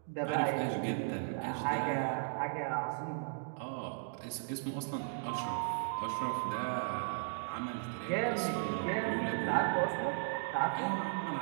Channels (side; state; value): left; silent; digital silence